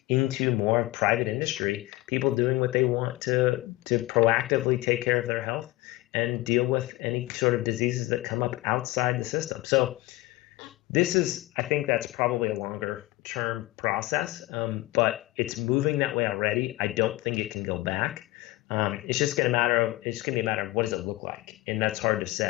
into more private industry, people doing what they want to proactively take care of their health and deal with any sort of diseases that come up outside the system. So I think that's probably a longer term process, but it's moving that way already. I don't think it can go back. It's just going to be a matter of what does it look like, and that's hard to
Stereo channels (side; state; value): right; quieter; 19.3 dB